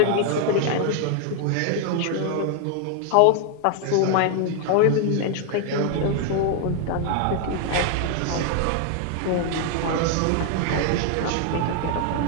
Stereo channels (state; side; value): different; both; correlation 0.00